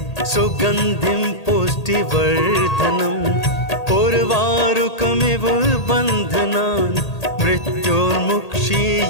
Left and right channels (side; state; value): right; late; 1.8 ms